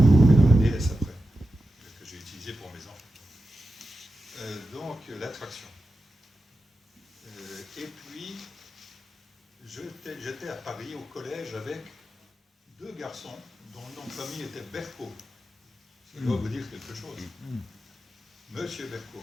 Et dans la DS après, que j'ai utilisée pour mes enfants. Donc, la traction. Et puis, j'étais à Paris, au collège, avec 2 garçons dont le nom de famille était Berco. Ça doit vous dire quelque chose. Monsieur Berco.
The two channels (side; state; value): both; normal; correlation 0.91